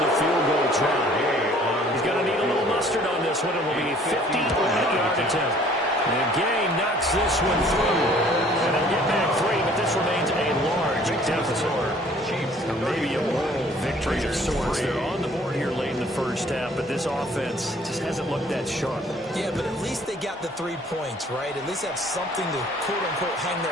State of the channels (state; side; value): normal; both; correlation 0.56